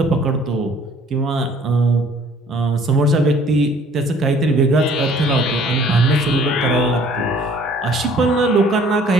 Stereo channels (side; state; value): both; normal; correlation 0.56